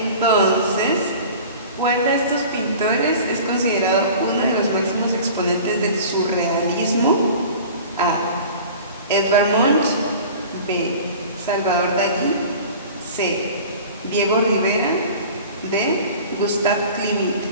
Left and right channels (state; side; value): inverted; both; correlation -0.40